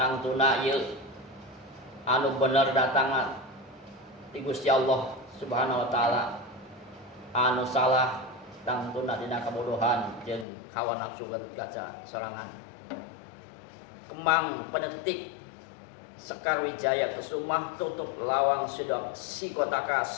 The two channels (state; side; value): drops out; right; at 10.5 s